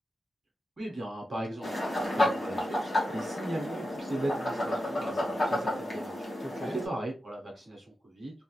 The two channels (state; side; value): normal; both; correlation 0.90